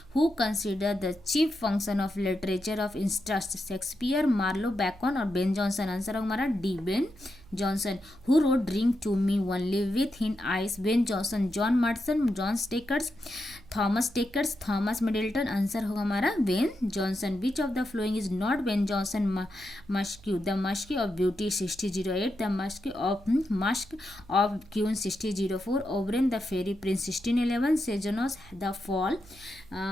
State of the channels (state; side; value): noise; right; hum, 23 dB below the sound